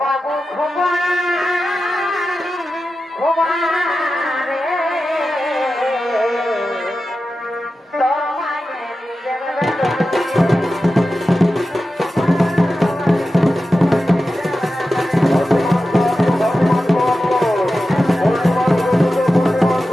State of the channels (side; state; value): both; normal; correlation 0.93